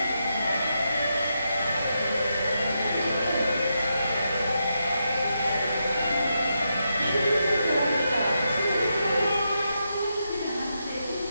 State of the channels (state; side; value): inverted; both; correlation -0.84